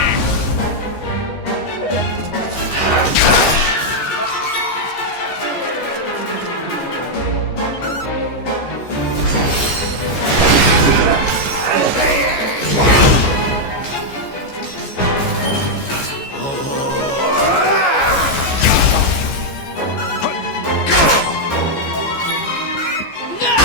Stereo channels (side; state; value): right; late; 15 ms